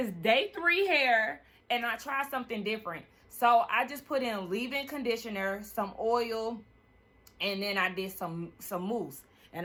day 3 hair. And I tried something different. So, I just put in leave-in conditioner, some oil, and then I did some mousse.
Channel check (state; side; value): identical; both; correlation 1.00